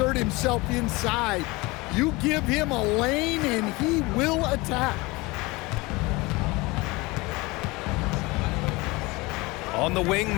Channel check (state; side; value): quieter; right; 23.3 dB